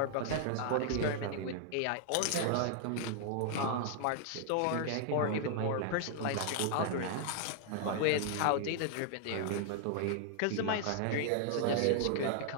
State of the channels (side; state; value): both; different; correlation 0.00